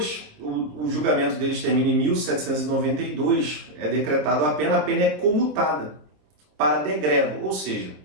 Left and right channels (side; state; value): left; late; 26 ms